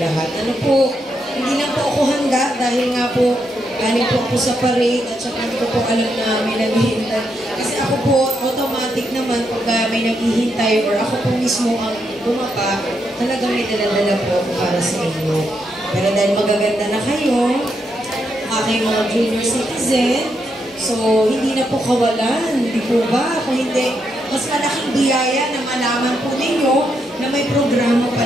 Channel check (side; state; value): both; normal; correlation 0.80